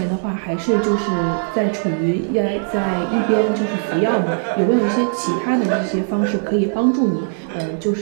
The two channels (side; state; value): left; silent; 66 dB below the other